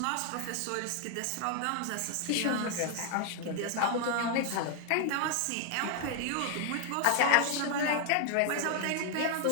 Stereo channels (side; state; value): both; different; correlation 0.00